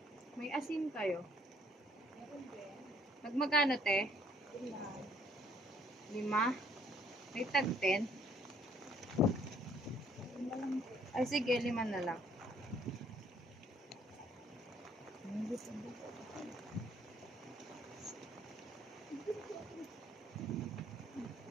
May asin kayo? Nagmagano, te? 5. May tag 10? Ay, sige, 5 na lang.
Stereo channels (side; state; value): both; normal; correlation 0.63